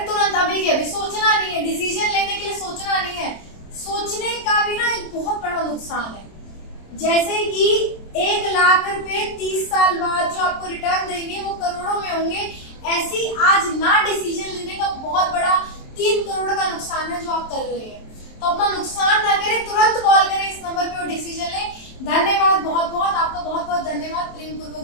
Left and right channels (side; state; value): right; late; 27 ms